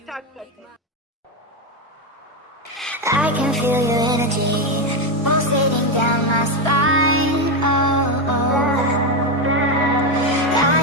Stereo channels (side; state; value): both; normal; correlation 0.09